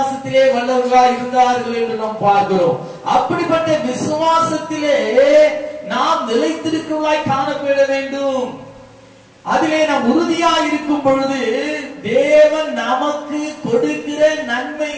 வல்லவர்களாய் இருந்தார்கள் என்று நாம் பார்க்கிறோம். அப்படிப்பட்ட விசுவாசத்திலே நாம் நிலைத்திருக்கிறவர்களாய் காணப்பட வேண்டும். அதிலே நாம் உறுதியாக இருக்கும் பொழுது தேவன் நமக்கு கொடுக்கிற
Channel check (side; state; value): both; identical; correlation 1.00